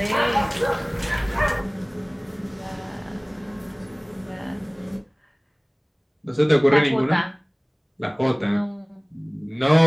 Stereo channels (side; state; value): both; identical; correlation 1.00